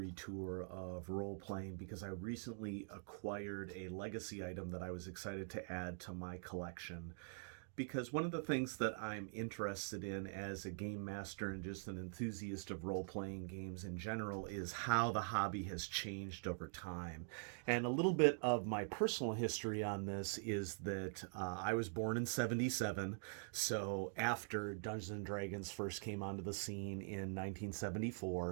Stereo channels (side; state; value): left; silent; digital silence